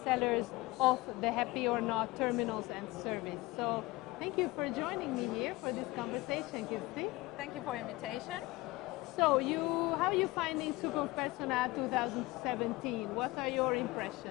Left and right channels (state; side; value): quieter; right; 21.0 dB